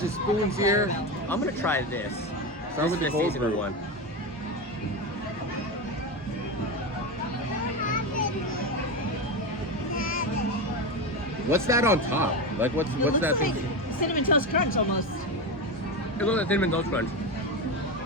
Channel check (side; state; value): both; normal; correlation 0.17